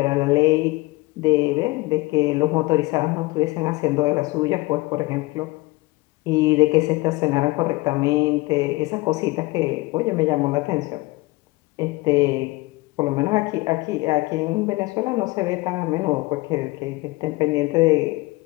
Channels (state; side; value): quieter; right; 21.9 dB